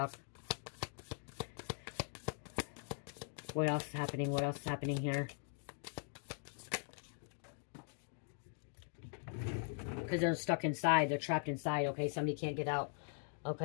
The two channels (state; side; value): silent; right; 50 dB below the other